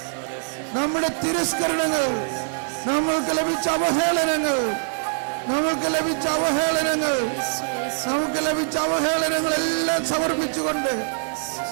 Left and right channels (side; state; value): left; silent; digital silence